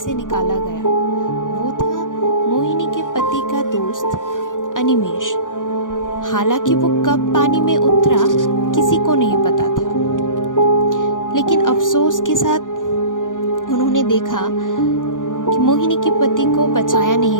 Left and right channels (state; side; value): late; right; 0.88 ms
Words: निकाला गया। वो था मोहिनी के पति का दोस्त अनिमेश। हालांकि वो कब पानी में उतरा किसी को नहीं पता था, लेकिन अफसोस के साथ उन्होंने देखा कि मोहिनी के पति को बचाया